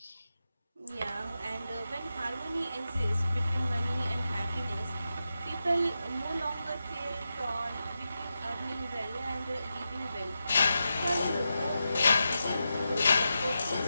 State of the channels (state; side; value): inverted; both; correlation -0.89